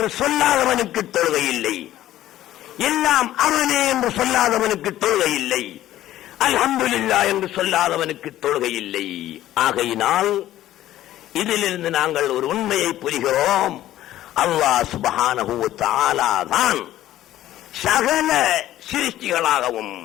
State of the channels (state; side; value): quieter; right; 13.7 dB